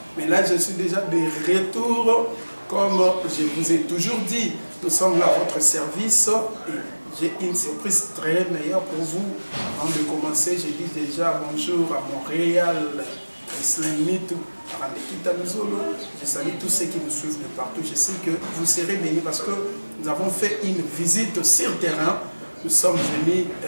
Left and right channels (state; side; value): inverted; both; correlation -1.00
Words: mais là je suis déjà de retour. Comme je vous ai toujours dit, nous sommes là à votre service et j'ai une surprise très meilleure pour vous. Avant de commencer, je dis déjà bonjour à Montréal, Islamitou, à Randekita Muzolo. Je salue tous ceux qui nous suivent de partout. Je sais que vous serez bénis parce que nous avons fait une visite sur terrain. Nous sommes venus